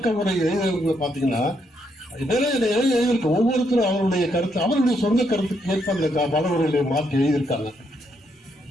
முறை எழுதுறவங்களை பாத்தீங்கன்னா எழுதியிருக்கு. ஒவ்வொருத்தரும் அவருடைய கருத்து, அவருடைய சொந்த கருத்துக்கு ஏற்ப அந்த பலவர்களை மாற்றி எழுதியிருக்காங்க.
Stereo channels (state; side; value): normal; both; correlation 0.76